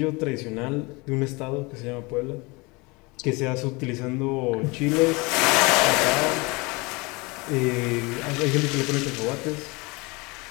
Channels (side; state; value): right; quieter; 26.2 dB